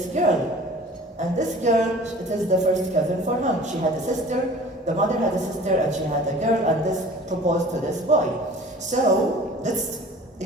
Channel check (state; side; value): normal; both; correlation 0.45